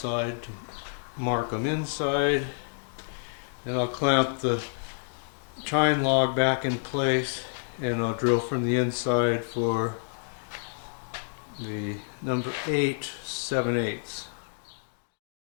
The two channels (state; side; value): silent; right; digital silence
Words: to mark them inside. Then I'll clamp the chine log back in place, and I'll drill from the inside for the number 8 7/8.